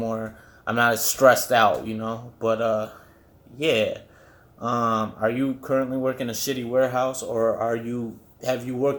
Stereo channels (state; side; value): identical; both; correlation 1.00